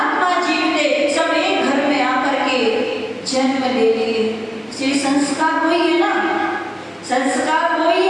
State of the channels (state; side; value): identical; both; correlation 1.00